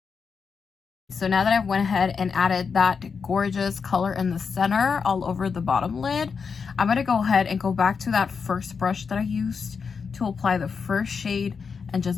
So now that I've went ahead and added that gorgeous color in the center all over the bottom lid, I'm gonna go ahead and go back to that first brush that I used to apply the first shade and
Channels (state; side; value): quieter; right; 5.7 dB